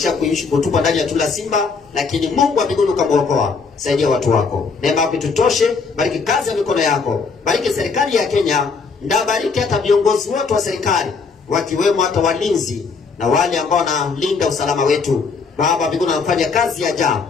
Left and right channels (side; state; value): right; quieter; 4.9 dB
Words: kuishi kutupa ndani ya tundu la simba, lakini Mungu wa mbinguni ukamwokoa. Saidia watu wako. Neema yako tutoshe. Bariki kazi ya mikono yako. Bariki serikali ya Kenya. Ndabariki hata viongozi wote wa serikali, wakiwemo hata walinzi na wale ambao wanalinda usalama wetu. Baba mbinguni wanafanya kazi ya ajabu.